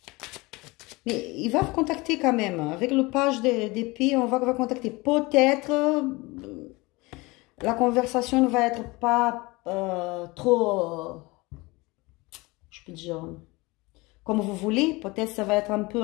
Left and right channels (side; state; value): right; quieter; 23.5 dB